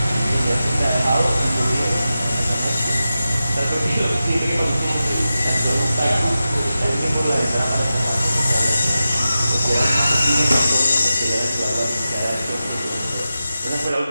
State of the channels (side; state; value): both; inverted; correlation -0.92